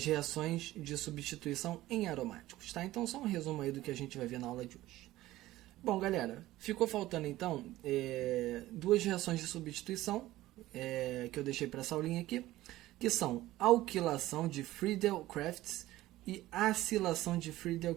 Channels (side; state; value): left; quieter; 16.2 dB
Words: reações de substituição em aromáticos, tá? Então, só um resumo aí do que a gente vai ver na aula de hoje. Bom, galera, ficou faltando então duas reações de substituição que eu deixei para essa aulinha aqui, que são alquilação de Friedel-Crafts e acilação de